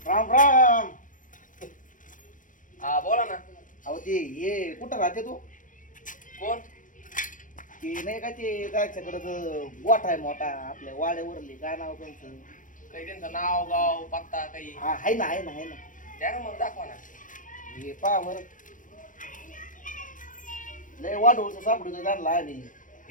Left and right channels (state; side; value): late; right; 0.38 ms